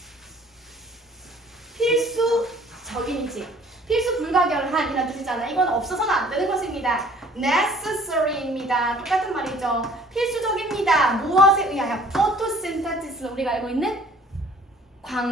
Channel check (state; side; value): normal; both; correlation 0.54